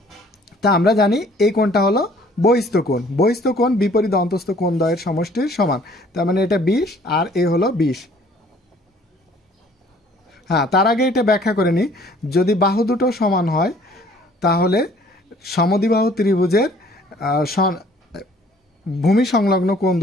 তা আমরা জানি এই কোণটা হলো বহিস্থ কোণ। বহিস্থ কোণ বিপরীত অন্তস্থ কোণ দ্বয়ের সমষ্টির সমান, তার মানে এটা 20 আর এ হলো 20। হ্যাঁ, তার আগে এটা ব্যাখ্যা করে নিই, যদি বাহু দুটো সমান হয়, তাহলে সমদ্বিবাহু ত্রিভুজের ভূমি সংলগ্ন কোণ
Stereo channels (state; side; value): normal; both; correlation 0.56